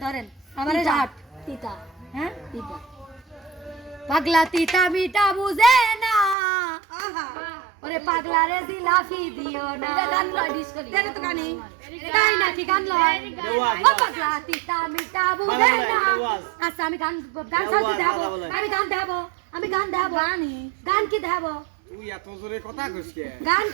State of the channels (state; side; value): drops out; left; at 6.4 s